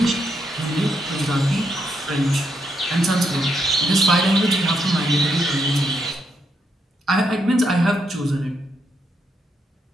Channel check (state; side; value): normal; both; correlation 0.78